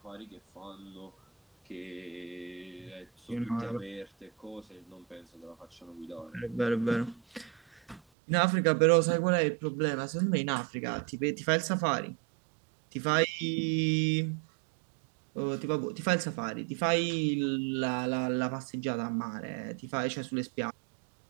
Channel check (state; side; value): drops out; left; at 8.0 s